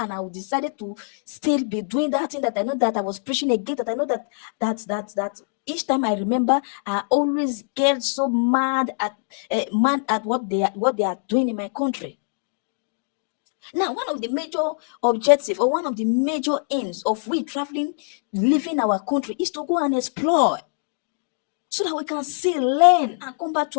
I will decide to still be doing that thing that I know that I was preaching against. That I know that each time I remember, I always get so mad at what they are doing in my country. Now, one of the major objectives or one of the major aims of we traveling, leaving our country is to go and explore so that we can see, learn, and come back to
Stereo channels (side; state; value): right; silent; digital silence